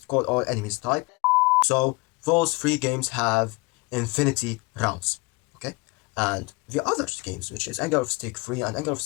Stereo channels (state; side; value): quieter; right; 25.8 dB